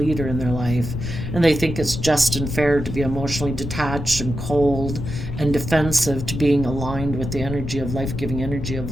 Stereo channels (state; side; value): noise; left; rumble, 6 dB below the sound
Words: in their life. And they think it's just and fair to be emotionally detached and cold and defensive to being aligned with the energy of life-giving energy of